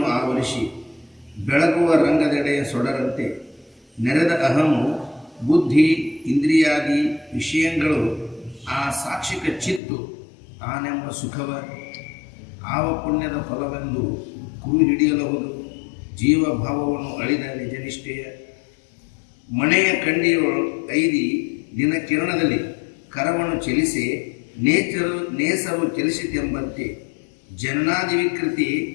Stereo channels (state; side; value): drops out; right; at 9.8 s